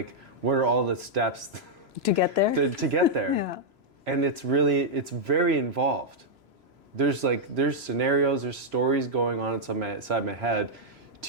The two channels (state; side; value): late; left; 3.0 ms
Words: what are all the steps To get there? to get there. Yeah. And it's very involved. There's scenarios, there's stories going on inside my head